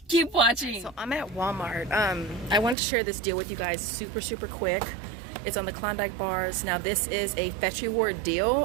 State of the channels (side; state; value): left; drops out; at 2.8 s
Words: keep watching. So I'm at Walmart. I wanted to share this deal with you guys super quick. It's on the Klondike bars. Now this is a Fetch Reward